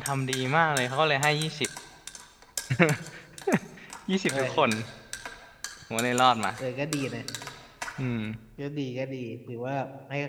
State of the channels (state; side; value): identical; both; correlation 1.00